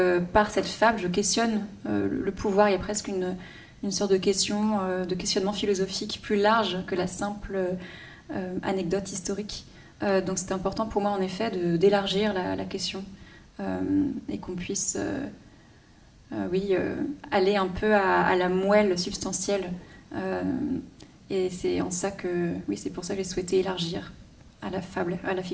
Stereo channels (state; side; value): identical; both; correlation 1.00